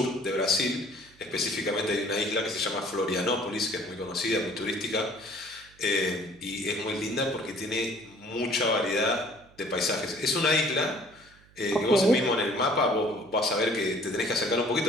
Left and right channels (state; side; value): noise; right; hum, 27 dB below the sound